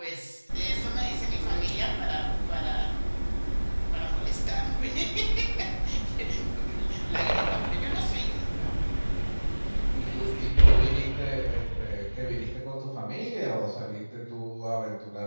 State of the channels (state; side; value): inverted; both; correlation -1.00